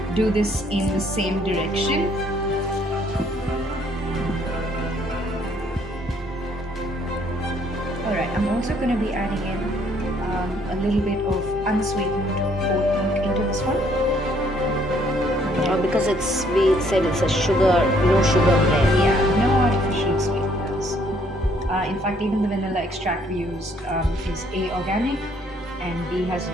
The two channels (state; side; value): normal; both; correlation 0.65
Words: do this in the same direction. Alright, I'm also going to be adding in a little bit of unsweetened oat milk into this one. Because we said it's a no sugar bread. Yeah, no artificial sweeteners. In fact, even the vanilla extract we used is A, organic, and B, has